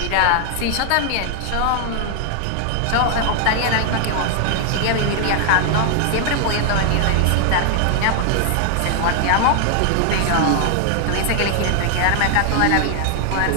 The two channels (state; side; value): different; both; correlation 0.00